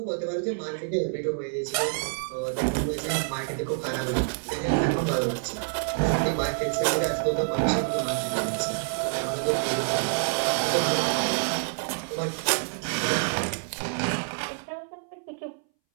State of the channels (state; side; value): silent; left; 60 dB below the other